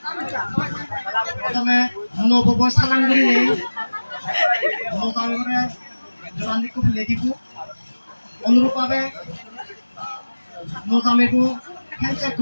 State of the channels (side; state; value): both; inverted; correlation -1.00